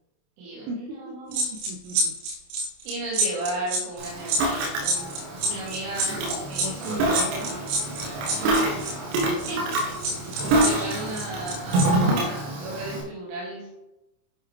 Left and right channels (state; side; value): late; left; 28 ms